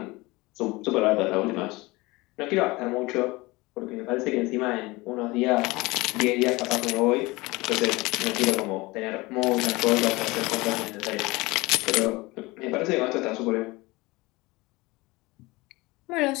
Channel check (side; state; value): right; quieter; 22.3 dB